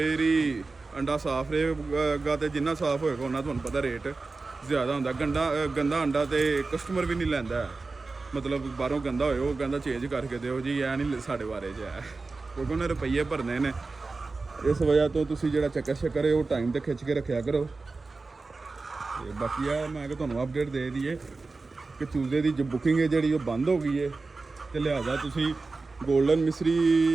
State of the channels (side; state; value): left; quieter; 3.8 dB